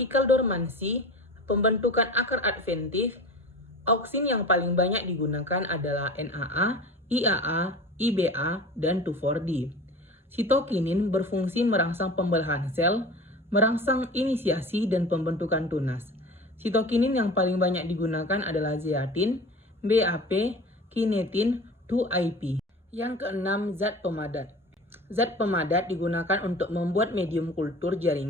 dormansi, pembentukan akar adventif. Auksin yang paling banyak digunakan adalah NAA, IAA, IBA, dan 2,4-D. Sitokinin berfungsi merangsang pembelahan sel, merangsang inisiasi dan pembentukan tunas. Sitokinin yang paling banyak digunakan adalah zeatin, BAP, kinetin, 2IP. Yang keenam, zat pemadat. Zat pemadat digunakan untuk membuat medium kultur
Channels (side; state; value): both; normal; correlation 0.36